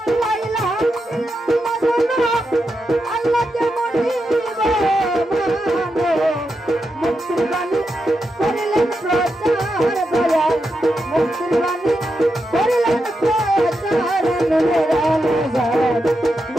আল্লাহকে মানিব মুক্তির বাণী করিলেন প্রচার দয়াল মুক্তির বাণী করিলেন প্রচার নূরের আলোজার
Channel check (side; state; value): both; normal; correlation 0.86